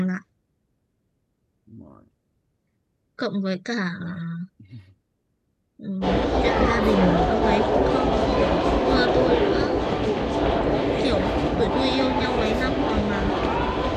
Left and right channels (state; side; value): identical; both; correlation 1.00